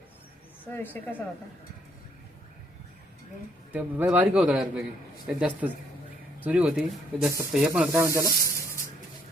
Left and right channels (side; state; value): both; normal; correlation 0.69